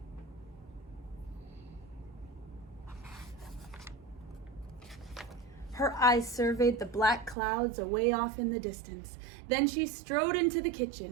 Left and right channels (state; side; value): drops out; left; at 7.4 s